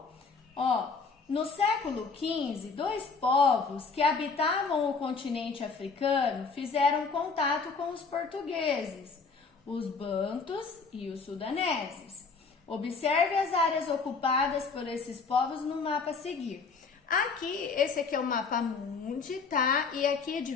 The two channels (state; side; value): quieter; right; 4.8 dB